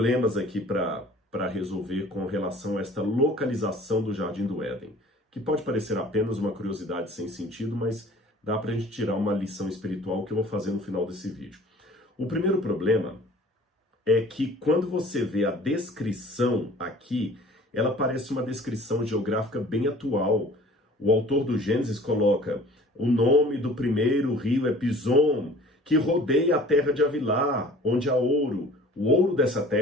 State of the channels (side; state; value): both; normal; correlation 0.48